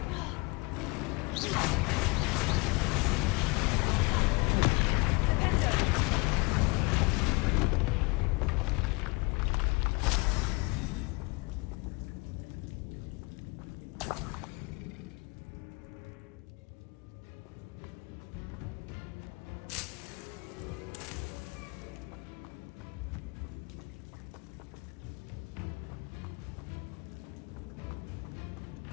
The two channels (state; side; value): quieter; right; 28.1 dB